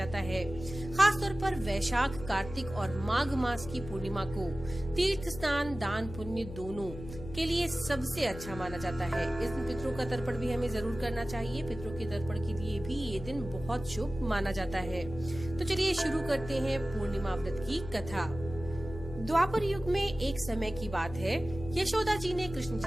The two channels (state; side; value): noise; left; hum, 11 dB below the sound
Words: है। खासतौर पर वैशाख, कार्तिक और माघ मास की पूर्णिमा को तीर्थ स्नान, दान, पुण्य दोनों के लिए सबसे अच्छा माना जाता है। इस दिन पितरों का तर्पण भी हमें जरूर करना चाहिए। पितरों के तर्पण के लिए भी ये दिन बहुत शुभ माना जाता है। तो चलिए शुरू करते हैं पूर्णिमा व्रत की कथा। द्वापर युग में एक समय की बात है, यशोदा जी ने कृष्ण